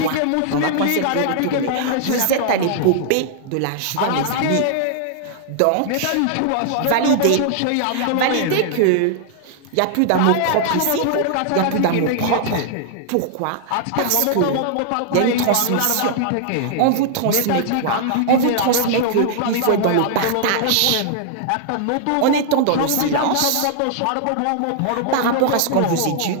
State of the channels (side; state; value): both; different; correlation -0.01